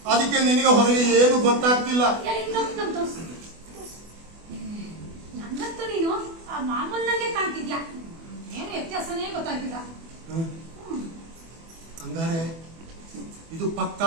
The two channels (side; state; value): left; late; 24 ms